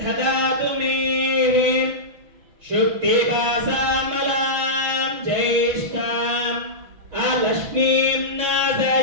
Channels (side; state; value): left; late; 6.0 ms